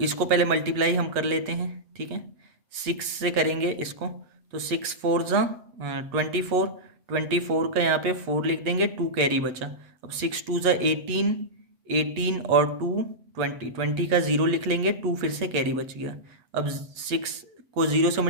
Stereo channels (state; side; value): late; left; 8.3 ms